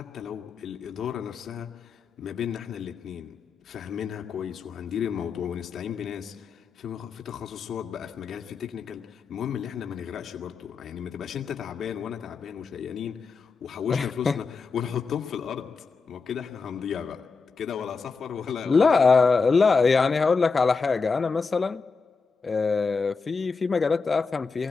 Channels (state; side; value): quieter; right; 4.8 dB